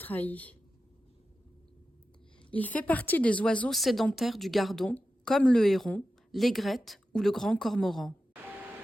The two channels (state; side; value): normal; both; correlation 0.92